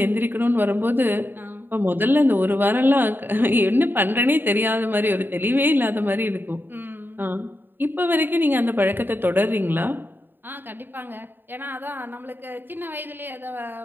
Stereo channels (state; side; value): late; left; 0.095 ms